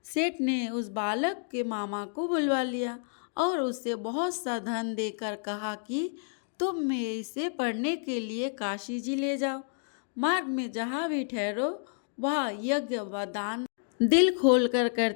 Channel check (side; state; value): right; silent; digital silence